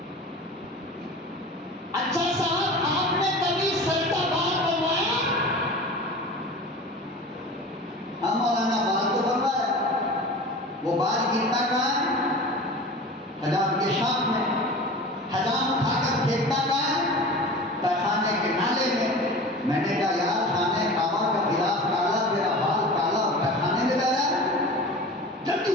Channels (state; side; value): normal; both; correlation 0.36